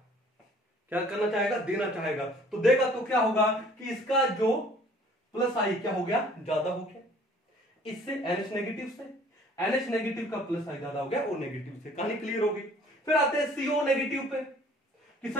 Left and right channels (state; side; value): normal; both; correlation 0.54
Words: क्या करना चाहेगा, देना चाहेगा। तो देगा तो क्या होगा कि इसका जो +I क्या हो गया, ज्यादा हो गया, इससे NH नेगेटिव से, NH नेगेटिव का +I ज्यादा हो गया O नेगेटिव से। कहानी क्लियर होगी। फिर आते हैं CO नेगेटिव पे कि